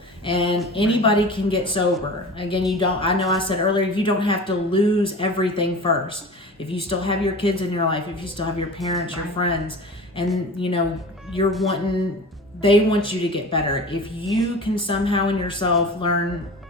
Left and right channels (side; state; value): both; normal; correlation 0.35